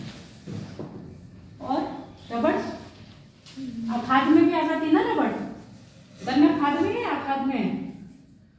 और रबड़। खाद में भी आ जाती ना रबड़। गन्ना खाद में है या खाद में है?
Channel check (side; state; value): both; identical; correlation 1.00